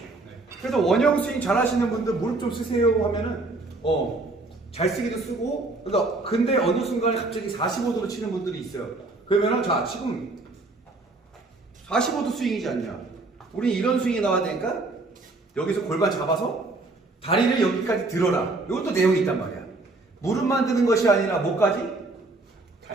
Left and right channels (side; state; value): left; quieter; 3.2 dB